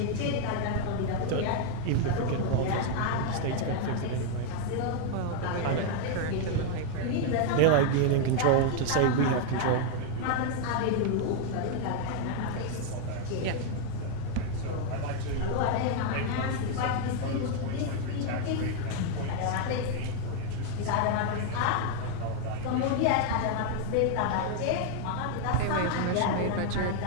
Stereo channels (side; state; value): both; different; correlation 0.00